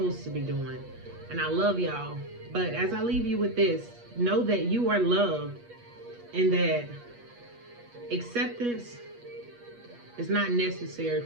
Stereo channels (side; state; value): left; late; 8.3 ms